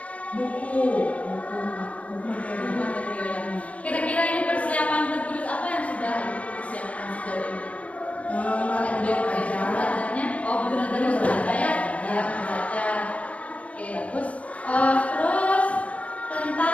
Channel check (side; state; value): right; late; 0.065 ms